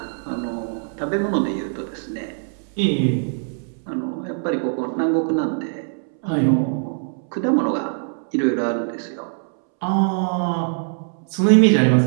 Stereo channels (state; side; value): silent; left; 64 dB below the other